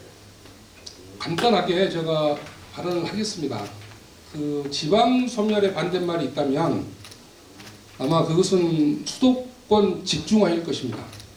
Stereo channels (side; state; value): both; identical; correlation 1.00